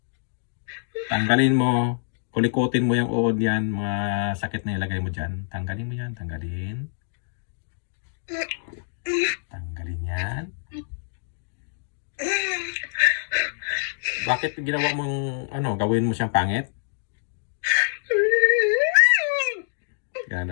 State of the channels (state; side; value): silent; right; digital silence